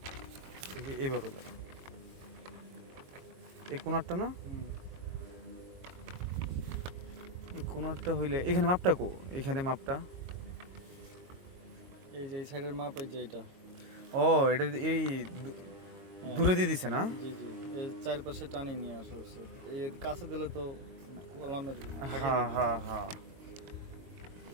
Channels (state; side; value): late; left; 22 ms